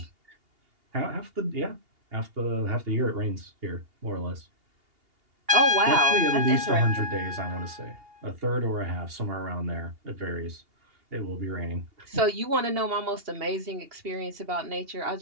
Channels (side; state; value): left; late; 2.8 ms